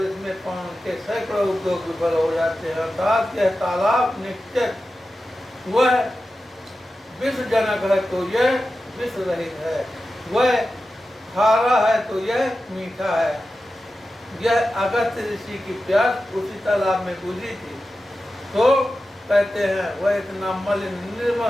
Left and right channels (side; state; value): both; normal; correlation 0.93